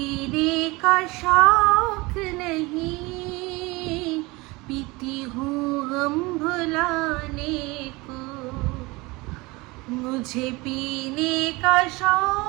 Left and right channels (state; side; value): quieter; left; 23.5 dB